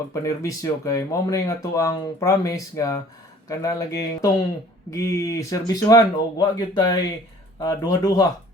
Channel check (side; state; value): both; normal; correlation 0.52